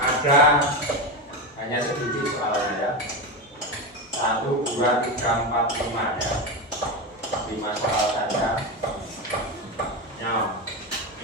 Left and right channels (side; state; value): both; normal; correlation 0.16